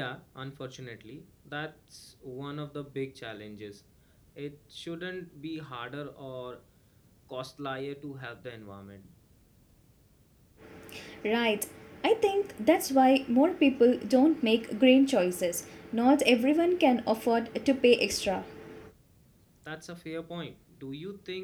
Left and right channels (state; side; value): identical; both; correlation 1.00